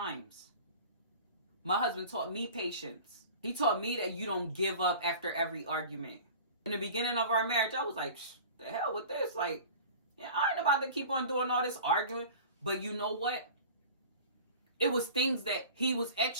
My husband taught me patience. He taught me that you don't give up after every argument. In the beginning of our marriage, I was like, the hell with this? Like, yeah, I ain't about to keep on doing all this arguing. But you know what? It was things that he was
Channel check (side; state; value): both; inverted; correlation -0.40